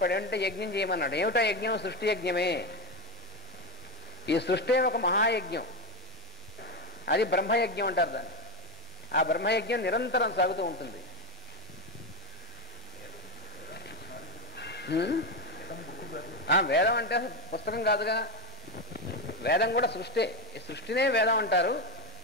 ఏమిటంటే యజ్ఞం చేయమన్నాడు. ఏమిటో యజ్ఞం? సృష్టి యజ్ఞమే. ఈ సృష్టి ఒక మహాయజ్ఞం. అది బ్రహ్మయజ్ఞం అంటారు దాన్ని. ఆ బ్రహ్మయజ్ఞం నిరంతరం సాగుతూ ఉంటుంది. వేదం అంటే పుస్తకం కాదుగా, వేదం కూడా సృష్టి. ఈ సృష్టినే వేదం అంటారు.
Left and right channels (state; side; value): normal; both; correlation 0.14